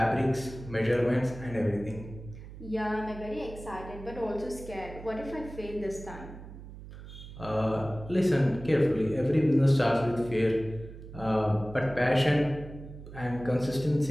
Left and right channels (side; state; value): right; noise; hum, 14 dB below the sound